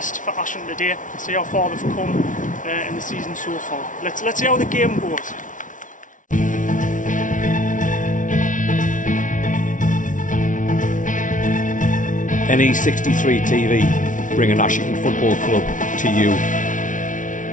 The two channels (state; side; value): late; right; 0.37 ms